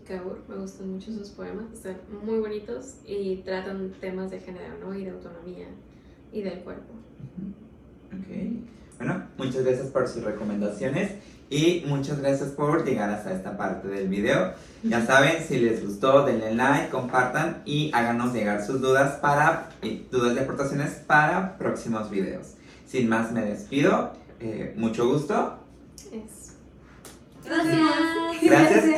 Kaur, me gustan mucho sus poemas, están muy bonitos y tratan temas de género, ¿no? Y de autonomía y del cuerpo. Ok. Bueno, muchas gracias por sus recomendaciones y muchas gracias por llegar hasta esta parte del video. Ya saben, si les gustó, denle like, compartan y háganos llegar sus dudas dudas y aportaciones para próximos videos. Sin más, me despido. Mucho gusto. Gracias.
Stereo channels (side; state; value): both; identical; correlation 1.00